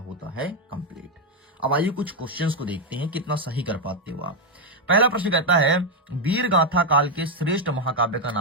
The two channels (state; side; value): normal; both; correlation 0.04